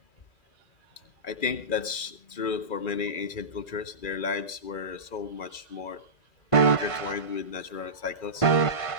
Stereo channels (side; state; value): right; late; 2.4 ms